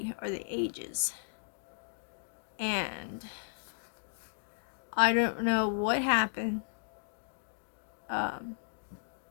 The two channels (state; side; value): silent; right; digital silence